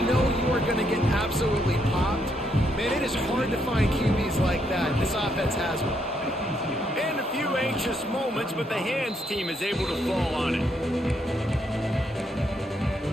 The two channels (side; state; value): both; normal; correlation 0.75